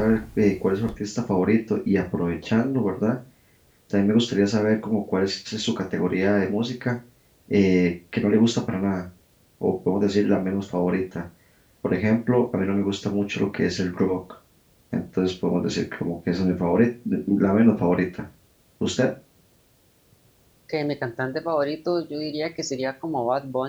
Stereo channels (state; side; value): identical; both; correlation 1.00